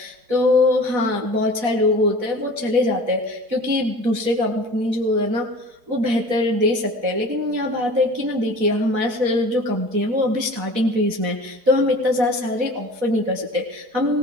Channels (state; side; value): late; left; 4.6 ms